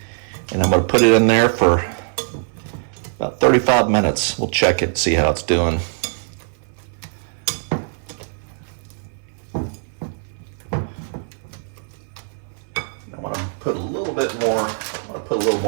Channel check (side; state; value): left; silent; 60 dB below the other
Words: and I'm going to put it in there for about 35 minutes. We'll check it, see how it's doing. Put a little bit more. I'm gonna put a little